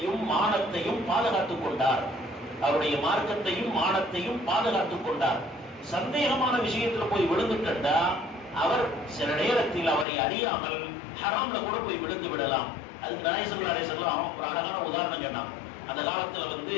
மானத்தையும் பாதுகாத்துக் கொண்டார். அவருடைய மார்க்கத்தையும் மானத்தையும் பாதுகாத்துக் கொண்டார். சந்தேகமான விஷயத்துல போய் விழுந்துட்டா அவர் சில நேரத்தில் அவரை அறியாமல் ஹராம்ல கூட போய் விழுந்து விடலாம். அதுக்கு நாயகம் ஸல்லல்லாஹு அலைஹி வஸல்லம் ஒரு அழகான உதாரணம் சொன்னாங்க. அந்த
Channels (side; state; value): right; drops out; at 10.1 s